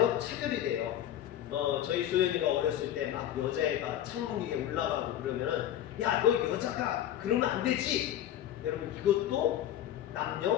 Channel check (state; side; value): quieter; right; 11.5 dB